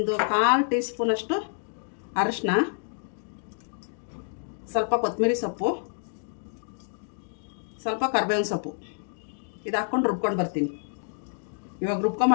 ಟೀ ಸ್ಪೂನಷ್ಟು ಅರಿಶಿನ, ಸ್ವಲ್ಪ ಕೊತ್ತಂಬರಿ ಸೊಪ್ಪು, ಸ್ವಲ್ಪ ಕರಿಬೇವಿನ ಸೊಪ್ಪು, ಇದು ಹಾಕ್ಕೊಂಡು ರುಬ್ಕೊಂಡು ಬರ್ತೀನಿ. ಇವಾಗ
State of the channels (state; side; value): silent; right; digital silence